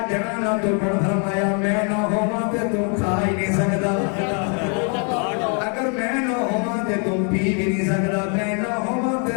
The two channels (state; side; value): quieter; right; 39.5 dB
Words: जगह ना तो फरमाया मैं ना होवां ते तू खा ही नहीं सकदा अगर मैं ना होवा ते तू पी भी नहीं सकता, मैं ना होवा